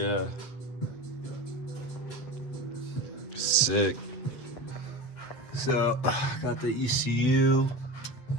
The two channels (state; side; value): late; right; 8.0 ms